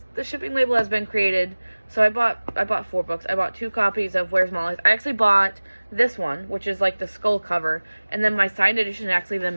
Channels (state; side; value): inverted; both; correlation -1.00